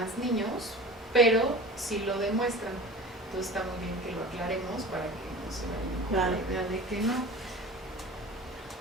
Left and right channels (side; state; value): both; normal; correlation 0.37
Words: niños, pero sí lo demuestran. Entonces está muy bien que lo aclaremos para que no se vayan con la idea de que no.